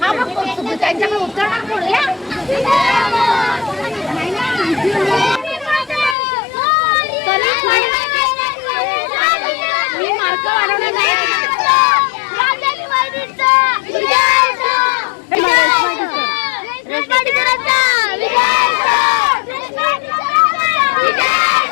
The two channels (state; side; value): drops out; right; at 6.2 s